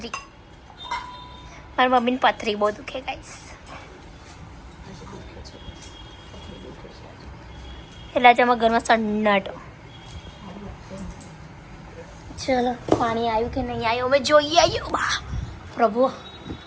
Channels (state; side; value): identical; both; correlation 1.00